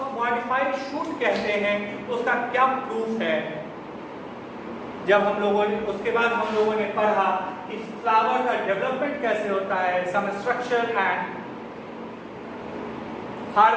मॉडिफाइड शूट कहते हैं, तो उसका क्या प्रूफ है। जब हम लोगों ने उसके बाद हम लोगों ने पढ़ा कि फ्लावर का डेवलपमेंट कैसे होता है, some structure and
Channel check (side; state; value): both; identical; correlation 1.00